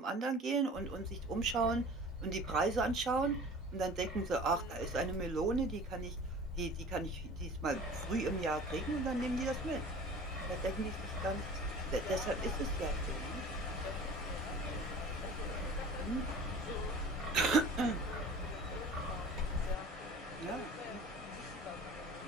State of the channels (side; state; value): both; normal; correlation 0.42